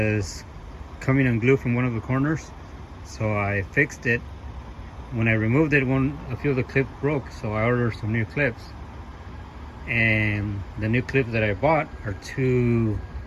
coming unglued from one of the corners. So I fixed it. When I removed it, a few of the clips broke, so I ordered some new clips. And the new clips that I bought are too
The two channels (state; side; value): identical; both; correlation 1.00